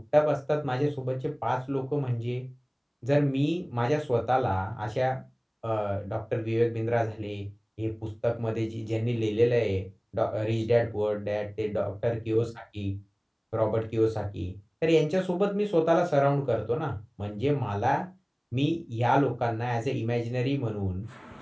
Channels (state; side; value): identical; both; correlation 1.00